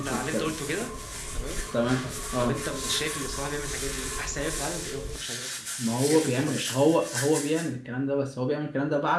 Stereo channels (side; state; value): both; identical; correlation 1.00